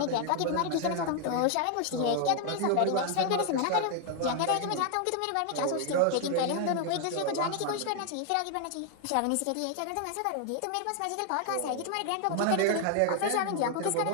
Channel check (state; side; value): different; both; correlation 0.00